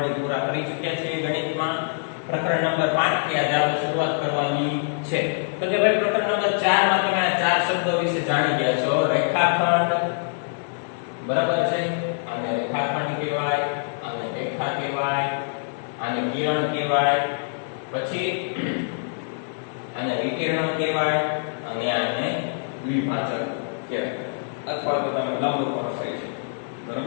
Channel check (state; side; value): silent; right; digital silence